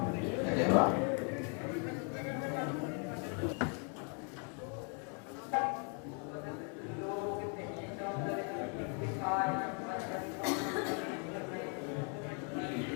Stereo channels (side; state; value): right; quieter; 39.5 dB